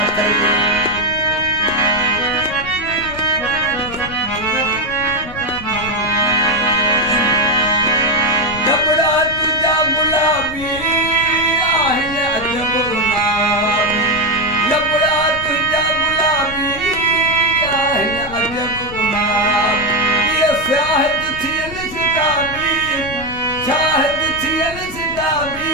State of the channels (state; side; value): noise; left; rumble, 13 dB below the sound